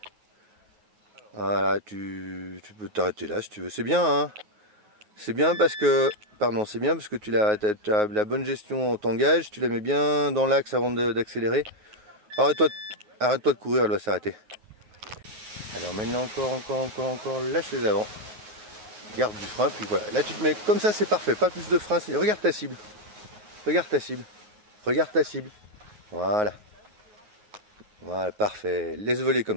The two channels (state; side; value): late; left; 9.4 ms